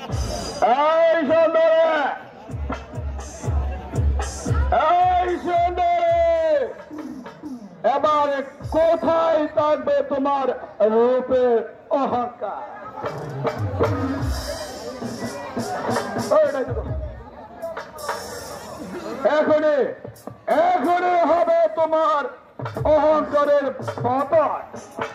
এই সুন্দরে, এই সুন্দরে, এবার কোথায় থাকবে তোমার রূপের অহংকার? এখনই এখনই হবে তোমার অহংকারের পতন।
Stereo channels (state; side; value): identical; both; correlation 1.00